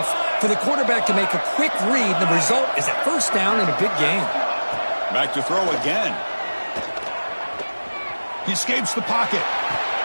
for the quarterback to make a quick read. The result is a 1st down in a big game. Back to throw again. He escapes the pocket.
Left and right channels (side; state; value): both; inverted; correlation -1.00